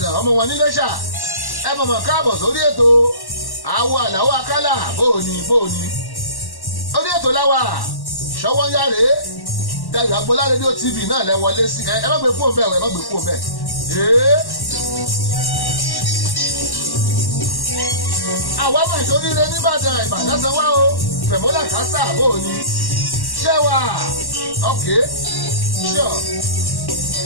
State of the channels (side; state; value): right; late; 1.1 ms